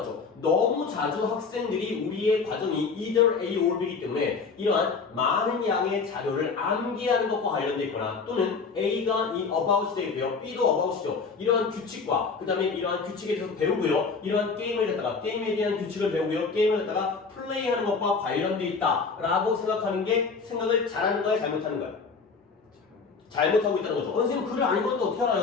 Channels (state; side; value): quieter; right; 4.9 dB